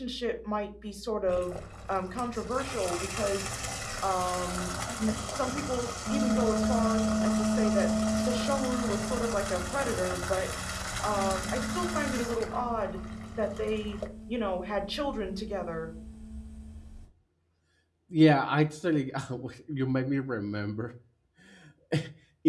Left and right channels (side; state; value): both; identical; correlation 1.00